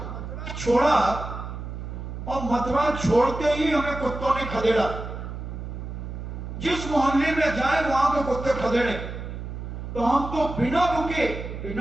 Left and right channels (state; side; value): noise; right; hum, 8 dB below the sound